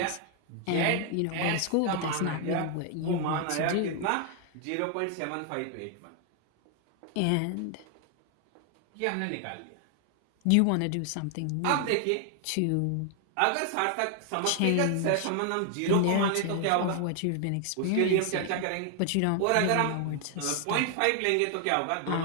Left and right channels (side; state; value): both; different; correlation 0.00